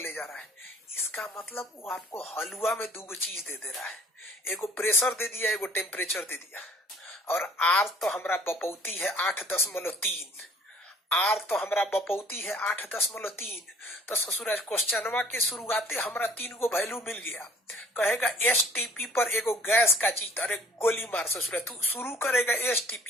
जा रहा है। इसका मतलब वो आपको हलवा में दो चीज दे दे रहा है, एगो प्रेशर दे दिया, एगो टेम्परेचर दे दिया। और आर तो हमारा बपौती है 8.3, आर तो हमारा बपौती है 8.3। तो ससुराज क्वेश्चनवा के शुरुआते हमारा 3 वैल्यू मिल गया। कहेगा एसटीपी पर एगो गैस का चीज, अरे गोली मार ससुराज, तू शुरू करेगा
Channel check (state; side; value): normal; both; correlation 0.55